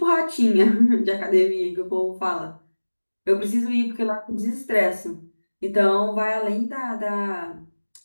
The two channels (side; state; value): both; inverted; correlation -1.00